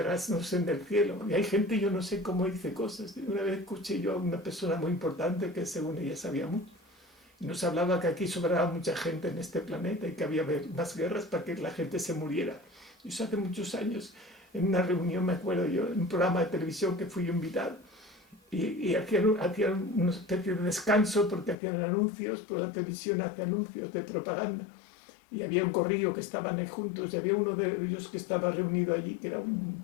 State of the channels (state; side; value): drops out; right; at 21.6 s